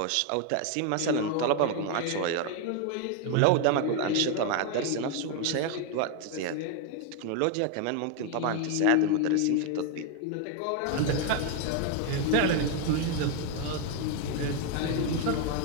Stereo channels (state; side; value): different; both; correlation 0.01